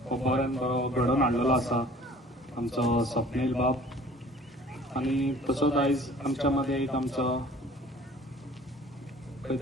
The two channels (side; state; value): both; normal; correlation 0.50